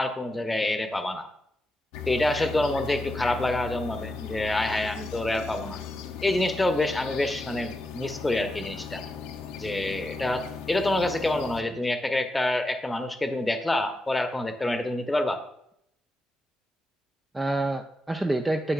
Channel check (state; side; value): normal; both; correlation 0.87